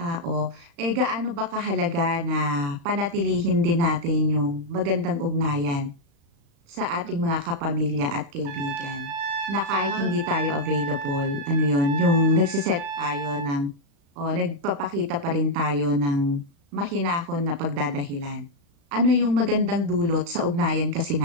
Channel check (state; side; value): late; left; 35 ms